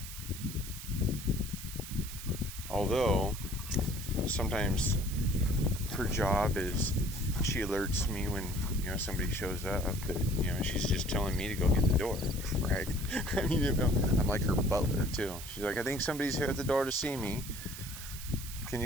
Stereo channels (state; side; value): noise; right; hiss, 11 dB below the sound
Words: Although, sometimes her job is she alerts me when somebody shows up, but she's just telling me to go get the door, right? I mean, I'm like her butler too. She's like, I think somebody's here at the door to see me. Can